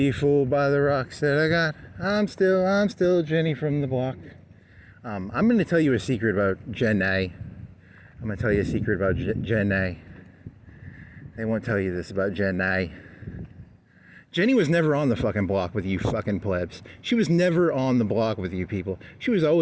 fooled by the rocks that I got. I'm still Jenny from the block. I'm going to tell you a secret about Jen A. I'm going to tell you a secret about Jen A. They won't tell you this about Jen A. Jenny was never on the fucking block with you fucking plebs. She was never on the block with you people. She was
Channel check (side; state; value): both; identical; correlation 1.00